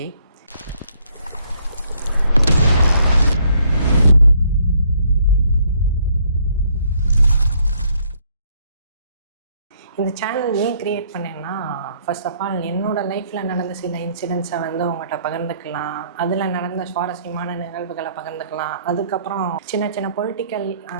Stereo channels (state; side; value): inverted; both; correlation -0.67